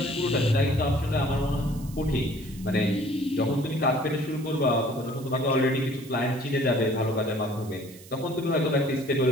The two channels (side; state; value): right; noise; hiss, 20 dB below the sound